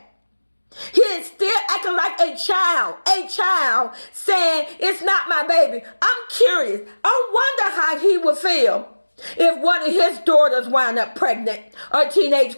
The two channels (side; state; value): both; inverted; correlation -1.00